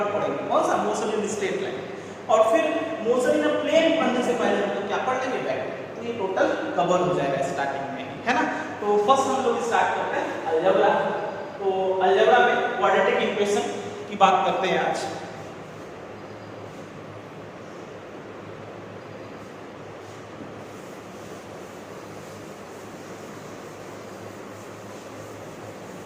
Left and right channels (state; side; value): identical; both; correlation 1.00